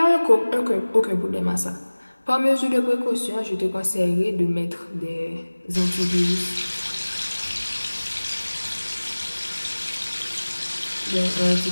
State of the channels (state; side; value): inverted; both; correlation -1.00